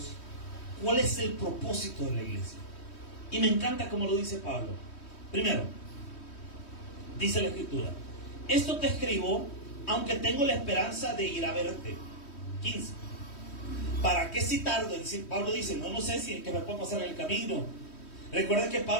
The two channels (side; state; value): right; late; 3.1 ms